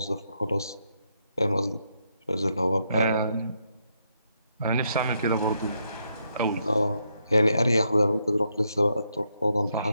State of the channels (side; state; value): both; inverted; correlation -0.78